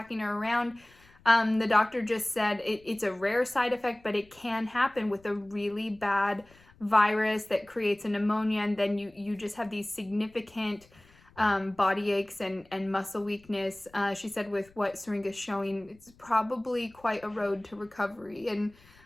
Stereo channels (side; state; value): left; noise; rumble, 28 dB below the sound